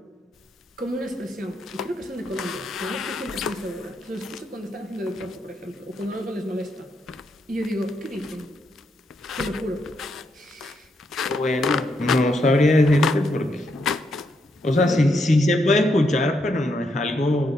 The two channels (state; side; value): normal; both; correlation 0.79